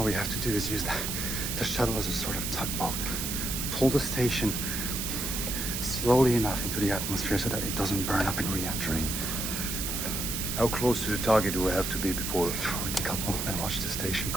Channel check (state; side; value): noise; right; hiss, 2 dB below the sound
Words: we have to do is use the shuttle as a sort of tugboat. Pull the station slowly enough into the atmosphere so that it doesn't burn up in re-entry. How close to the target do we have to be before we decouple and watch the station